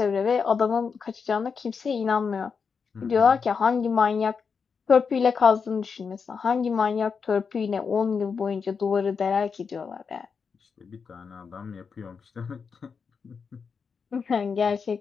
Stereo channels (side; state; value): right; quieter; 5.7 dB